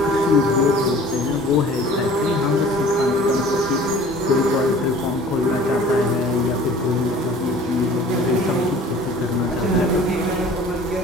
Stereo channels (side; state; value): both; normal; correlation 0.47